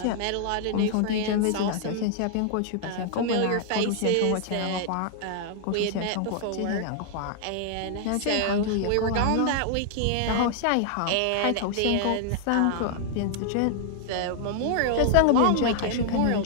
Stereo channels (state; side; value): different; both; correlation -0.01